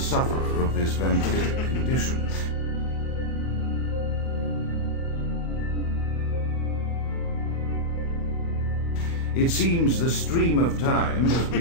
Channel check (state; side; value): late; right; 24 ms